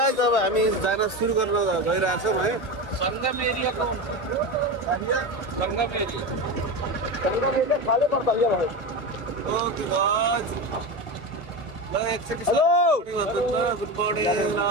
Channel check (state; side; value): late; right; 1.1 ms